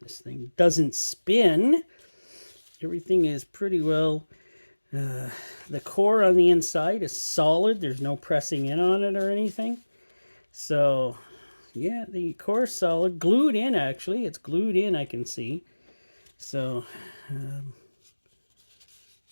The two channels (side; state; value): both; inverted; correlation -1.00